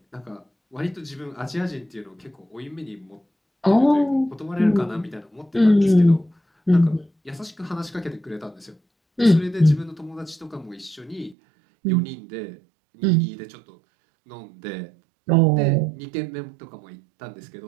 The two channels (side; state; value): left; drops out; at 11.4 s